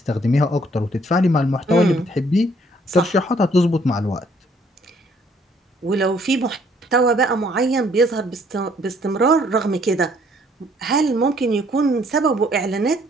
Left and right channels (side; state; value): both; normal; correlation 0.64